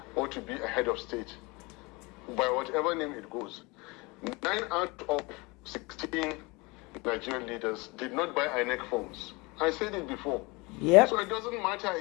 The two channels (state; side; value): quieter; right; 25.7 dB